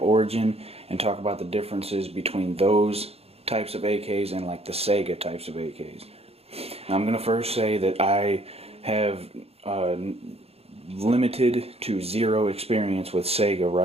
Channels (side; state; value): left; late; 0.29 ms